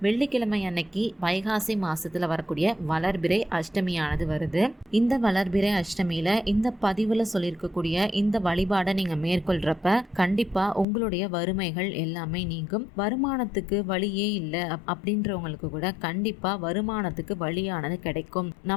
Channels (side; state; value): right; drops out; at 10.9 s